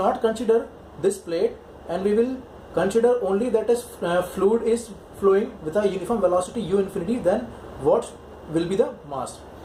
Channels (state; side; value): identical; both; correlation 1.00